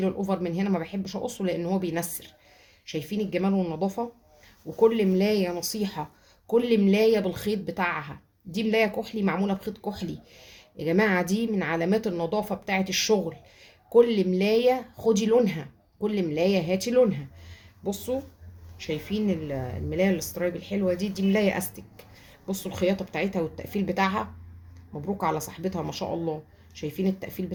الاوفر من هنا، ما بحبش اقصه لان هو بينسر. شايفين الجمال والنظافه؟ وكل ملايه نصيحه، كل ملايه بالخيط بتاعها. دي ملايه كحلي معموله بخيط كحلي يا جماعه، دي من علامات النظافه بتاعه الشغل. كل ملايه خدي لونها، كل ملايه هاتي لونها. بصوا شايفين الملايه الاسترايب الحلوه دي ملايه استك. بصوا الخياطه بتاعتها والتقفيل بتاعها، مبروك على صاحبتها ما شاء الله. شايفين التقفيل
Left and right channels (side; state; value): both; identical; correlation 1.00